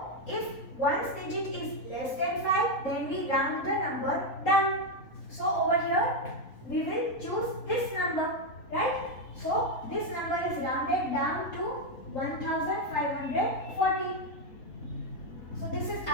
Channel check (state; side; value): late; right; 3.8 ms